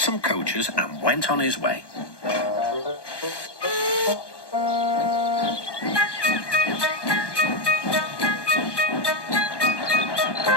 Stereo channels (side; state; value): right; late; 1.2 ms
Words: coaches and went on his way.